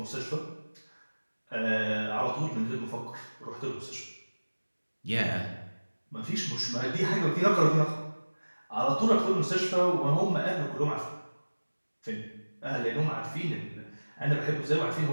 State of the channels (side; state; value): both; inverted; correlation -1.00